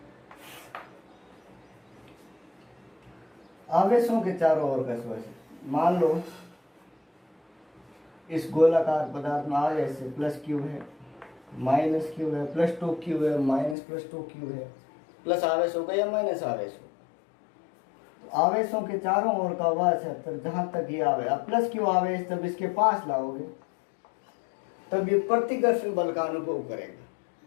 आवेशों के चारों ओर का स्पर्श। मान लो इस गोलाकार पदार्थ में आवेश है प्लस क्यू है, माइनस क्यू है, प्लस टू क्यू है, माइनस प्लस टू क्यू है। प्लस आवेश होगा या माइनस आवेश हो, तो आवेशों के चारों ओर का वह क्षेत्र जहां तक ये आवे, अब प्लस क्यू आवेश जब इसके पास लाओगे तब ये प्रतिकर्षण बल का अनुभव करेगा।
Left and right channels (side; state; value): right; drops out; at 13.8 s